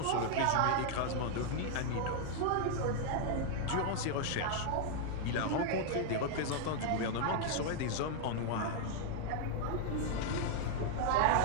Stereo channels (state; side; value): different; both; correlation 0.00